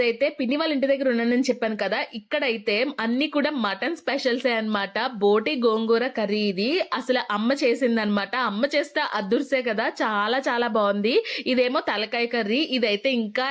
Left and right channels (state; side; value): identical; both; correlation 1.00